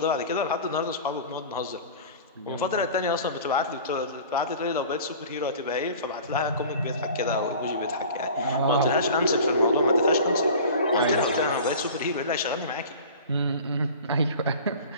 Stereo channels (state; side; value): inverted; both; correlation -0.40